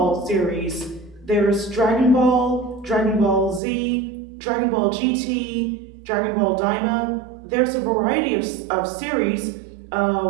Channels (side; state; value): left; drops out; at 3.6 s